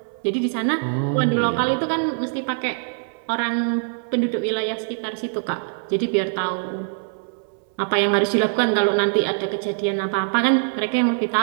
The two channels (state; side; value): silent; left; 64 dB below the other